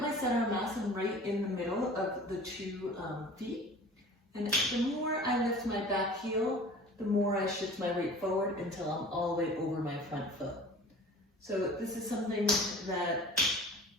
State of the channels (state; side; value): normal; both; correlation 0.43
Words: my center of mass, I'm right in the middle of the two feet. And the more I lift my back heel, the more I shift my weight forward until I'm all the way over my front foot. So this is something that